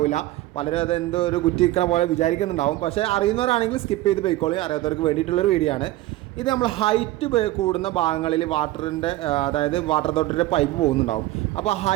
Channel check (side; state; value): left; quieter; 16.6 dB